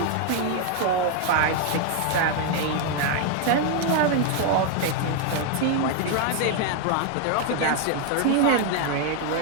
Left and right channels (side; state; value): both; different; correlation 0.00